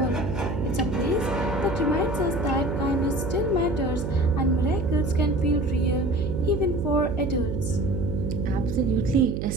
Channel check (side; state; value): right; noise; hum, 3 dB below the sound